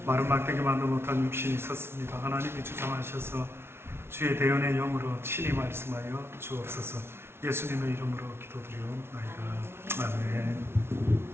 마른 막대기 만도 못한 육신이 섰습니다. 하나님이 주장하셔서 주의 대언의 영으로 친히 말씀하여 주옵소서. 예수님의 이름으로 기도드리옵나이다. 아멘.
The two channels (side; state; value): left; late; 0.12 ms